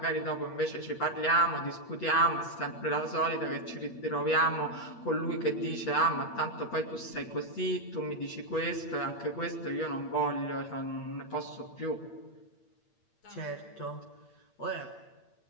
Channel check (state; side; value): late; right; 8.7 ms